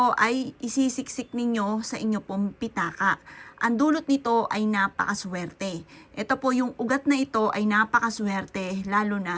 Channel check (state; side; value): identical; both; correlation 1.00